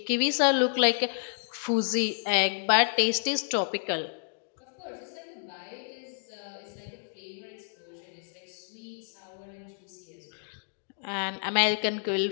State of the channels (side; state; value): right; silent; digital silence